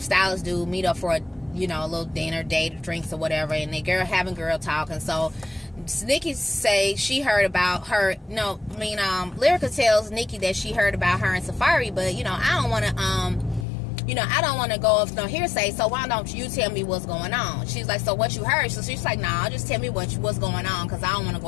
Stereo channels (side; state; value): right; drops out; at 13.7 s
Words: do meet up for a, you know, a little dinner, date, drinks or whatever, and they having girl talk. And so Nikki say she heard about her. No, I mean, Lyrica tells Nikki that she heard about her and Safari, but you know, I don't want to, you know, I don't want to go off no hearsay. So why don't you tell me what's going on? She's like, so what you heard? So she's like, nah, just tell me what's going on, because I don't want to go